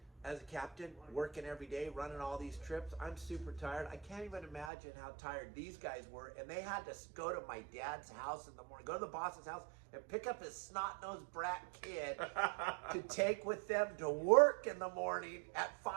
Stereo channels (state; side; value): drops out; left; at 4.7 s